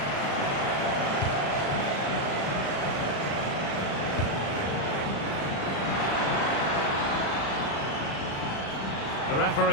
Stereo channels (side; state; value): right; late; 36 ms